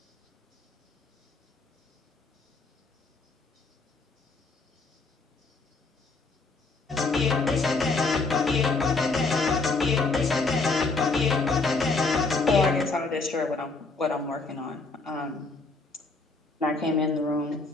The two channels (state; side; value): quieter; right; 3.8 dB